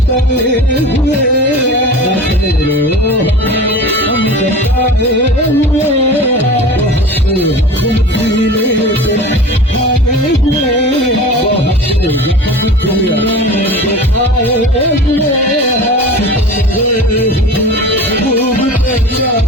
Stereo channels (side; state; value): both; normal; correlation 0.36